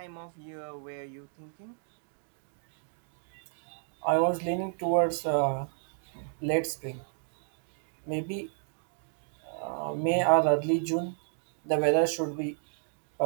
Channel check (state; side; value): silent; left; digital silence